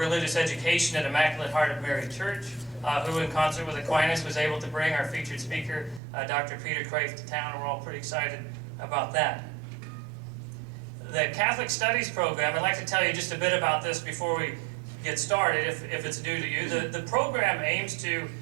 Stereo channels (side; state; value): left; drops out; at 6.0 s